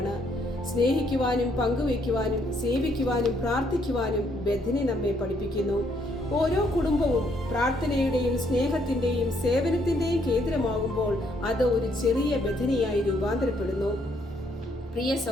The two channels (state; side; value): normal; both; correlation 0.70